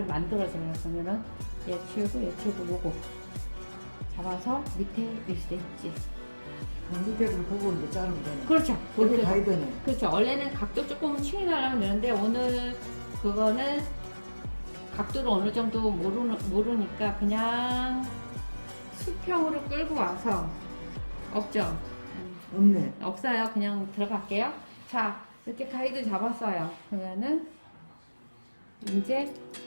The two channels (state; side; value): inverted; both; correlation -1.00